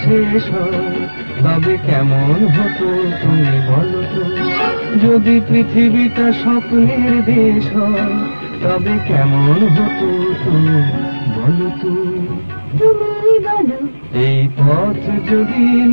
শেষ হয় তবে কেমন হতো তুমি বলো তো। যদি পৃথিবীটা স্বপ্নের দেশ হয় তবে কেমন হতো তুমি বলো তো। তুমি বলো এই পথ যদি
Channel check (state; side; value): inverted; both; correlation -1.00